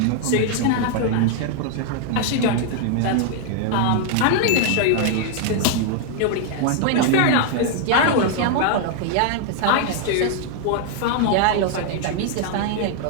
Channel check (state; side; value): different; both; correlation 0.00